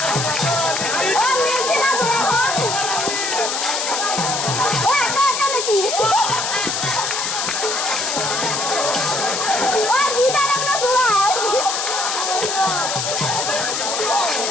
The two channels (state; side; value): noise; left; hiss, 1 dB below the sound